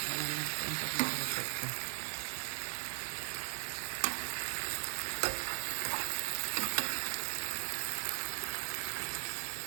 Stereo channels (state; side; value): silent; left; digital silence